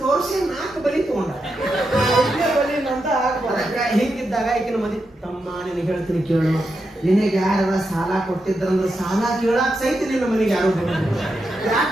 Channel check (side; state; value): both; normal; correlation 0.86